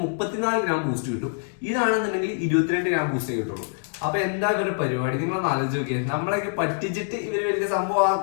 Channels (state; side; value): silent; right; digital silence